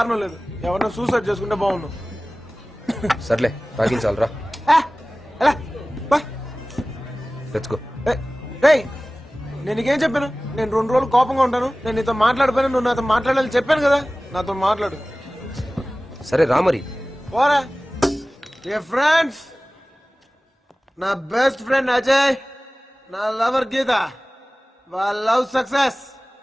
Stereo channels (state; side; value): normal; both; correlation 0.98